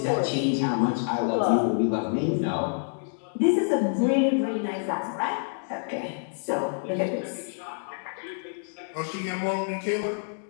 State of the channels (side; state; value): right; silent; digital silence